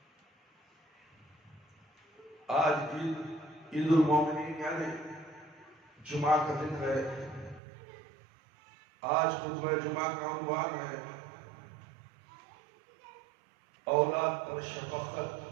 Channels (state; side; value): drops out; left; at 7.6 s